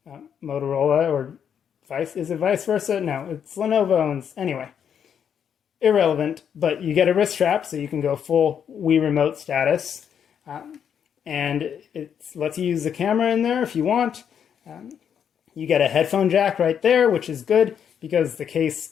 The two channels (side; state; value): right; quieter; 8.2 dB